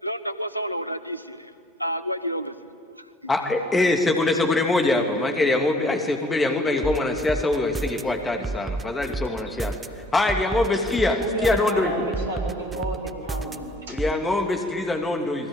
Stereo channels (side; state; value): both; normal; correlation 0.57